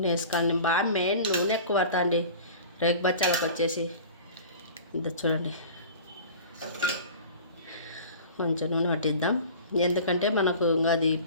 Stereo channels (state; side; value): inverted; both; correlation -0.40